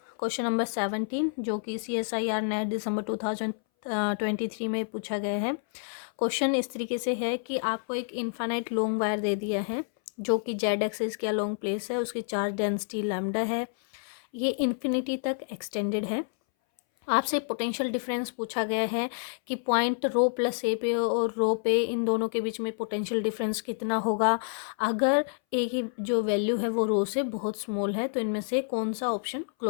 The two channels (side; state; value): right; silent; 59 dB below the other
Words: क्वेश्चन नंबर 17 जो कि CSIR नेट दिसंबर 2023 में पूछा गया है। क्वेश्चन इस तरीके से है कि आपको एक इनफाइनाइट लॉन्ग वायर दे दिया है जो कि जेड एक्सिस के लॉन्ग प्लेस है, उसकी चार्ज डेंसिटी लैम्डा है, ये इन्फिनिटी तक एक्सटेंडेड है। आपसे पोटेंशियल डिफरेंस पूछा गया है कि पॉइंट रो प्लस ए पे और रो पे इन दोनों के बीच में पोटेंशियल डिफरेंस कितना होगा अगर ए की जो वैल्यू है वो रो से बहुत स्मॉल है, तो इनमें से कौन सा ऑप्शन